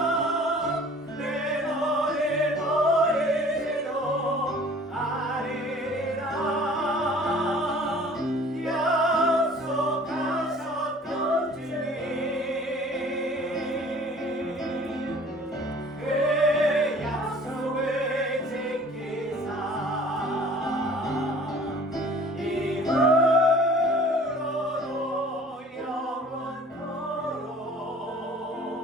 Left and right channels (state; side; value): normal; both; correlation 0.49